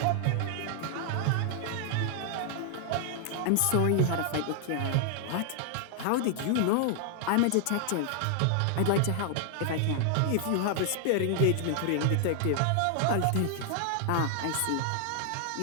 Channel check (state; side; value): different; both; correlation 0.00